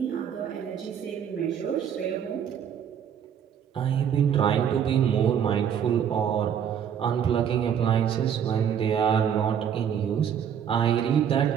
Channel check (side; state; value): left; quieter; 8.5 dB